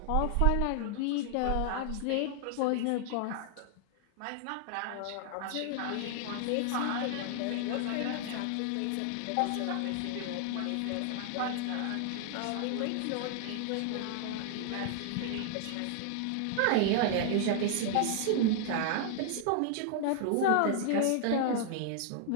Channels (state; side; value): different; both; correlation -0.01